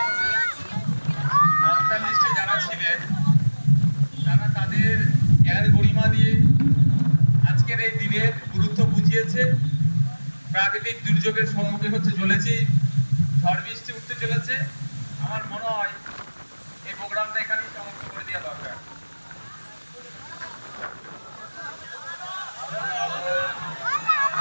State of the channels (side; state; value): both; inverted; correlation -1.00